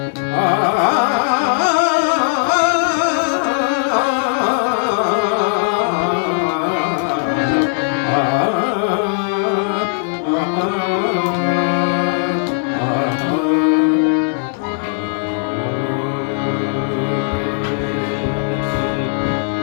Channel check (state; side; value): silent; right; digital silence